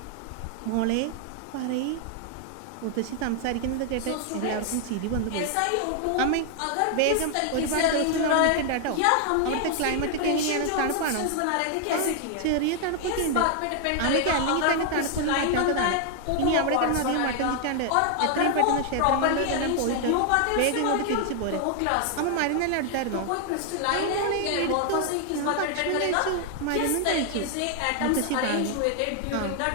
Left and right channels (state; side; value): different; both; correlation 0.00